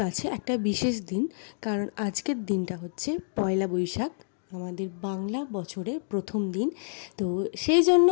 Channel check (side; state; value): right; silent; digital silence